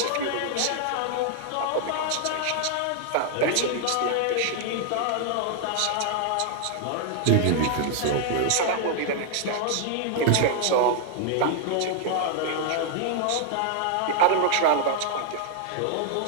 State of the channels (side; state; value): both; different; correlation 0.00